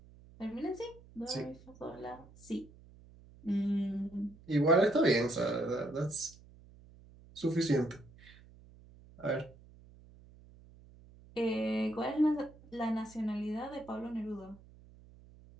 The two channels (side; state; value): right; noise; hum, 23 dB below the sound